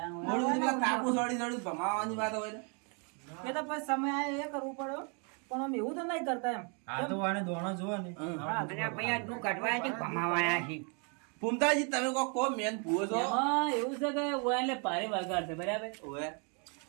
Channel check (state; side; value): quieter; left; 37.0 dB